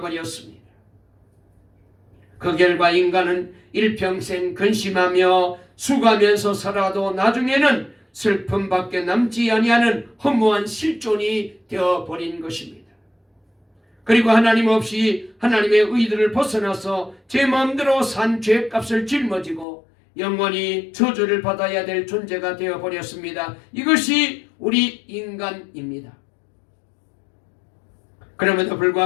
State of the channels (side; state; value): right; drops out; at 19.7 s